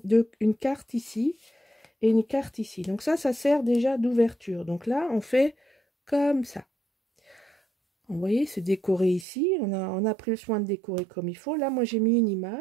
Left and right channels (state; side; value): drops out; left; at 9.2 s